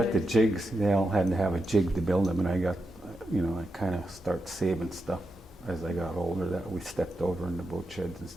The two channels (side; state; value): both; normal; correlation 0.87